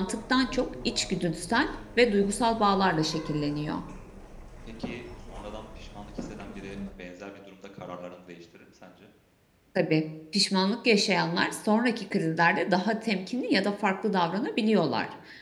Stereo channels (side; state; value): both; identical; correlation 1.00